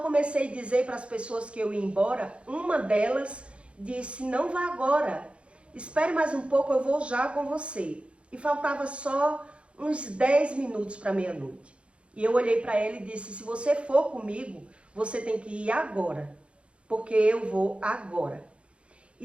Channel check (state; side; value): late; left; 0.059 ms